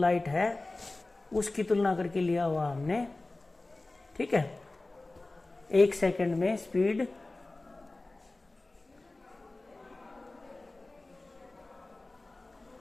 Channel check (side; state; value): right; quieter; 3.0 dB